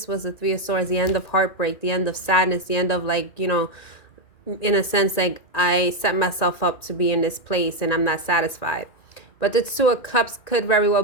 was the Three of Swords, the end of heartbreak, the end of sadness, the end of, like, you know, in a sense, like, I set myself up to be in this place and I'm not satisfied. But the Two of Cups could very well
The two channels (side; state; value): right; late; 1.9 ms